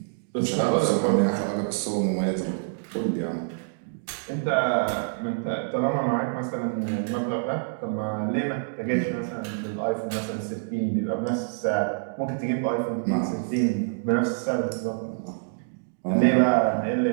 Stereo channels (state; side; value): silent; left; digital silence